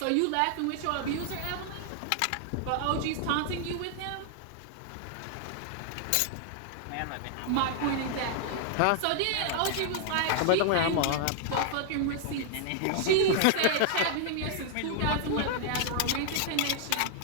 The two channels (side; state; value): both; different; correlation 0.00